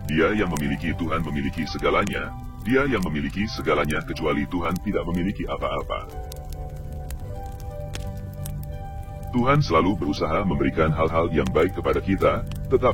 Dia yang memiliki Tuhan memiliki segalanya. Dia yang memiliki segalanya kecuali Tuhan tidak memiliki apa-apa. Tuhan selalu berusaha memberikan hal-hal yang baik kepada kita,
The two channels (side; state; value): both; identical; correlation 1.00